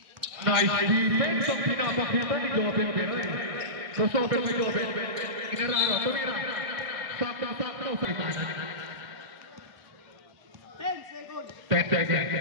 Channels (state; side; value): late; left; 1.6 ms